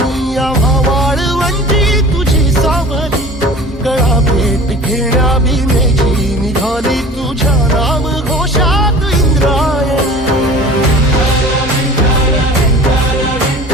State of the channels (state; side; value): normal; both; correlation 0.42